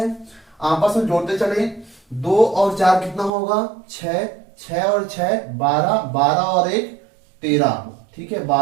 आपस में जोड़ते चले, 2 और 4 कितना होगा? 6, 6 और 6 12, 12 और 1 13। ठीक है,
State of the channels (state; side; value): drops out; left; at 3.3 s